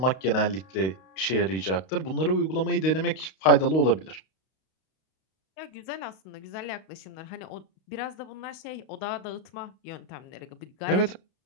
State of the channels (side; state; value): right; late; 32 ms